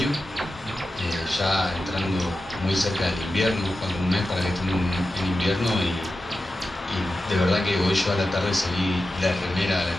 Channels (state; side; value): normal; both; correlation 0.92